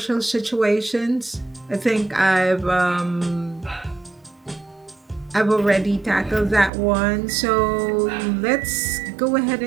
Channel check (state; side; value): drops out; left; at 6.7 s